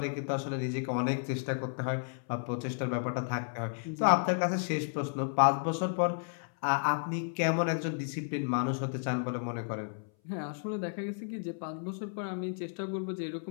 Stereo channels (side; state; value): right; silent; 56 dB below the other